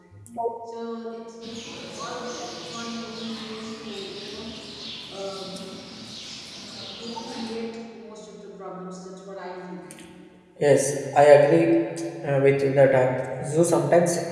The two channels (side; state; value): both; identical; correlation 1.00